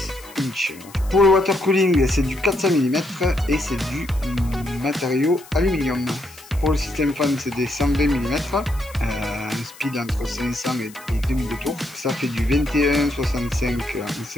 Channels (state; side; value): noise; left; hiss, 21 dB below the sound